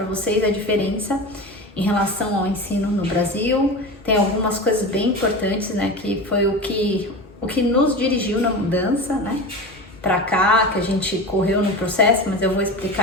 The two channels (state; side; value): normal; both; correlation 0.28